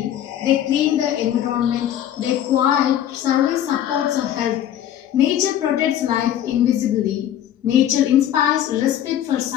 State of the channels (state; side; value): quieter; right; 11.0 dB